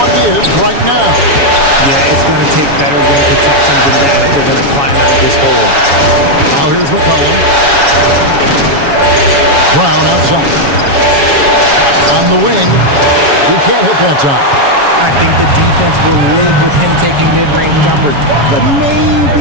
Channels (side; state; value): left; late; 7.2 ms